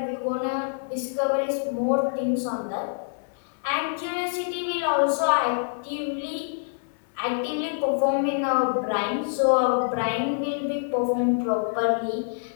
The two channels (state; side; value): silent; right; 61 dB below the other